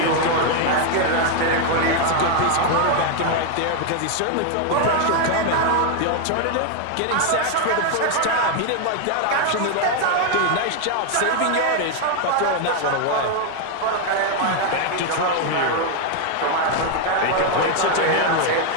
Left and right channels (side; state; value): both; different; correlation 0.01